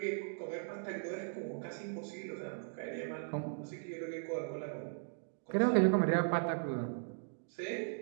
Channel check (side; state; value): left; silent; digital silence